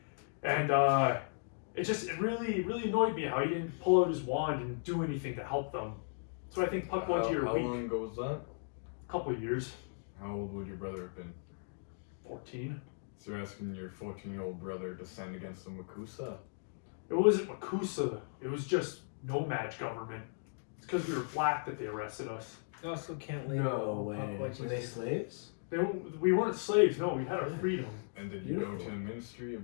and it really annoyed me how he didn't pull out his wand and do anything to help them. So I think puckwudgie are How weak. long ago was that? A couple of years. How old would your brother have been? 14. So you're asking your 14-year-old brother to stand against the Makusa? It wasn't Makusa. It was just no-match government. It's because we were black that they arrested us. You also can't label No way. puckwudgies. Were they slaves? We weren't slaves. No, we had our freedom. And did you go Beautiful. to the ministry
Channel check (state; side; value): silent; right; digital silence